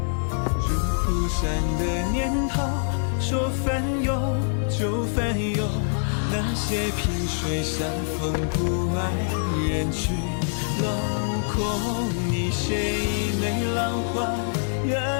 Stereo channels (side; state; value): right; silent; digital silence